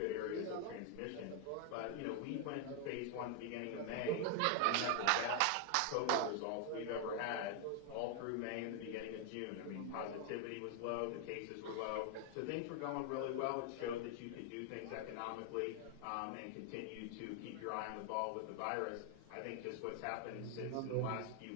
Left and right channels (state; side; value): different; both; correlation 0.00